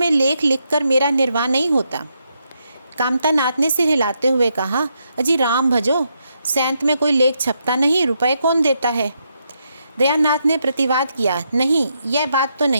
लेख लिखकर मेरा निर्वाह नहीं होता। कामतानाथ ने सिर हिलाते हुए कहा, अजी राम भजो, सैंत में कोई लेख छपता नहीं, रुपए कौन देता है? दयानाथ ने प्रतिवाद किया, नहीं, यह बात तो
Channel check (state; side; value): inverted; both; correlation -0.80